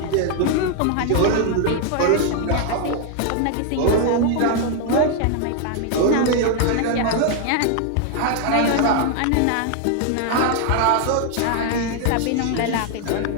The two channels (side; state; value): both; different; correlation 0.00